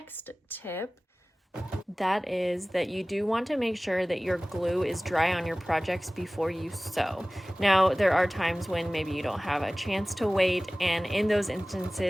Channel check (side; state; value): both; normal; correlation 0.98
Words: tip. That is that you do want to make sure that your glue is dry on your projects before you sew. Now, there are times when maybe you don't have a chance to wait, and in those